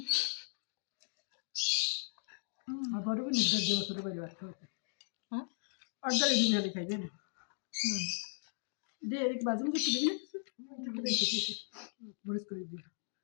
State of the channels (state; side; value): silent; right; digital silence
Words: আবারও নিদ্রা দিয়ে বছর বাড়ি বাচ্চা হচ্ছে হ্যাঁ অর্ডার দিন খালি খাইবে না দে এক বাজে মুখে দিবি না মরিস করে দিবি